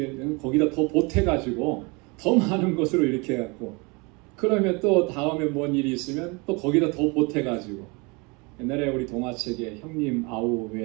거기다 더 보태가지고 더 많은 것으로 이렇게 해갖고 그러면 또 다음에 뭔 일이 있으면 또 거기다 더 보태가지고 옛날에 우리 동화책에 형님 아우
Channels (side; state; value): left; quieter; 28.9 dB